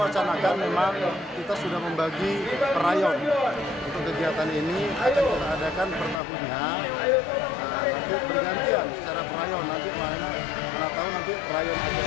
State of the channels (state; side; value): drops out; right; at 6.2 s